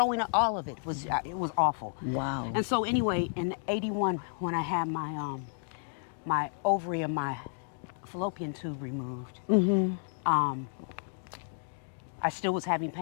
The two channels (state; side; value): silent; right; digital silence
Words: up, all of it was awful. Wow. And so anyway, in 81, when I had my ovary and my fallopian tube removed, I still was having